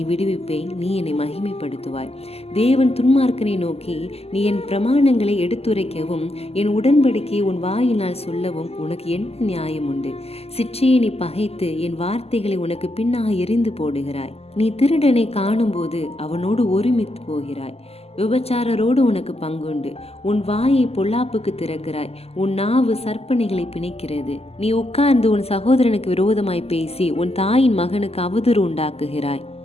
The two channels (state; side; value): late; right; 0.29 ms